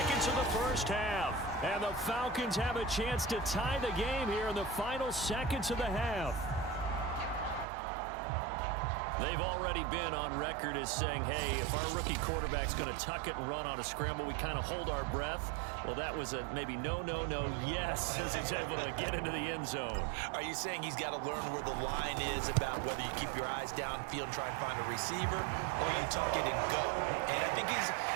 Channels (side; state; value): left; drops out; at 7.7 s